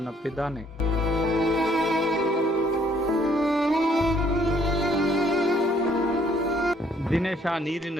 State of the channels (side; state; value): both; normal; correlation 0.64